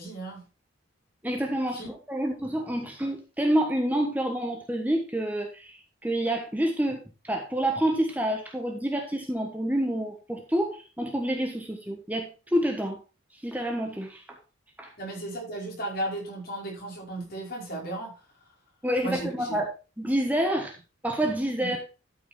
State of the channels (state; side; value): normal; both; correlation 0.75